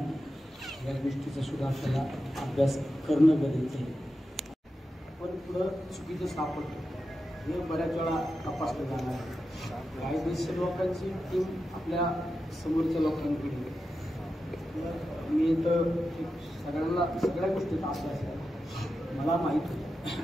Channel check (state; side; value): normal; both; correlation 0.90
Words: या गोष्टीचा सुद्धा आपल्याला अभ्यास करणं गरजेचं आहे। पण पुढं चुकीचं सापडतं हे बऱ्याच वेळा तपासलं जाणार आहे। काही देश लोकांची टीम आपल्या समोरच्या लोकांकडे मी तर सगळ्या गोष्टीत असे असतात मला माहीत